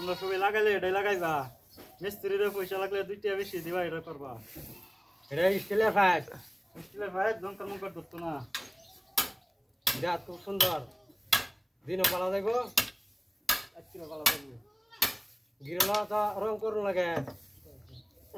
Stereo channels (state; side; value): identical; both; correlation 1.00